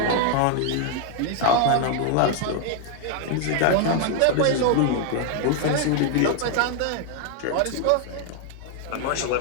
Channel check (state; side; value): different; both; correlation 0.00